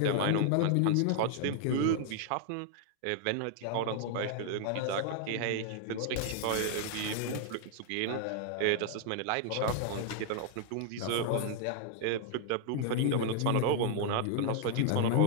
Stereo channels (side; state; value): both; different; correlation 0.00